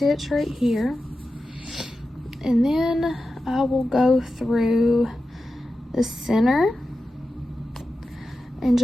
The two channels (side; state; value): both; normal; correlation 0.92